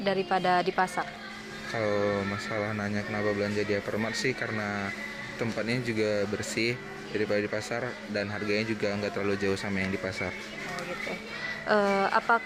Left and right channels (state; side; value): identical; both; correlation 1.00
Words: daripada di pasar? Kalau masalah nanya kenapa belanja di Hypermart sih karena tempatnya juga bersih daripada di pasar dan harganya juga nggak terlalu jauh sama yang di pasar.